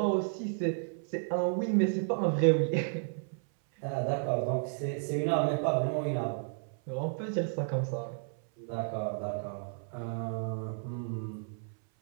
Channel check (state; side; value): silent; left; 56 dB below the other